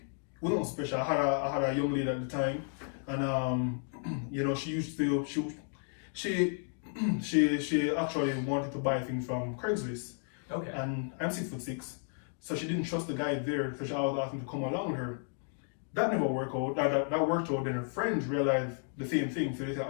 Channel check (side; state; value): right; silent; 56 dB below the other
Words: wasn't special. I had a young lady at the time, and she used to she actually wanted to buy things from Craigslist. Okay. And I'm 6'6", so she didn't trust the guy there, so she always asked him to come along with her. That never worked out. That worked out. Then her friends realized the same thing. So they said,